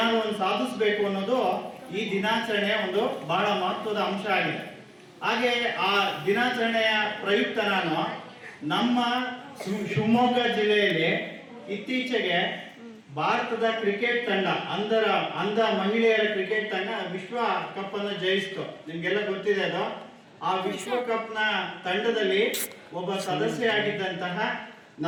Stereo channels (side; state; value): both; identical; correlation 1.00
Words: ಒಂದು ಸಾಧಿಸಬೇಕು ಅನ್ನೋದು ಈ ದಿನಾಚರಣೆಯ ಒಂದು ಬಹಳ ಮಹತ್ವದ ಅಂಶ ಆಗಿದೆ. ಹಾಗೆ ಆ ದಿನಾಚರಣೆಯ ಪ್ರಯುಕ್ತ ನಾನು ನಮ್ಮ ಶಿವಮೊಗ್ಗ ಜಿಲ್ಲೆಯಲ್ಲಿ ಇತ್ತೀಚೆಗೆ ಭಾರತದ ಕ್ರಿಕೆಟ್ ತಂಡ ಅಂಧ ಮಹಿಳೆಯರ ಕ್ರಿಕೆಟ್ ತಂಡ ವಿಶ್ವ ಕಪ್ ಅನ್ನು ಜಯಿಸಿತು. ನಿಮ್ಗೆಲ್ಲ ಗೊತ್ತಿದೆ ಅದು. ಆ ವಿಶ್ವಕಪ್ನ ತಂಡದಲ್ಲಿ ಒಬ್ಬ ಸದಸ್ಯರಾಗಿದ್ದಂತಹ